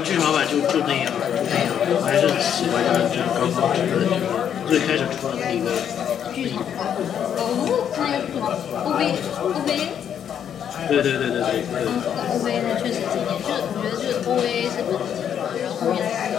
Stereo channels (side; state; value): right; quieter; 8.9 dB